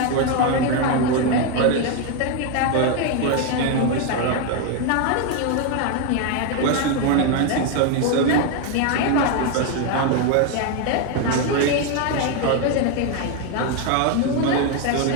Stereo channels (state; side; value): different; both; correlation 0.01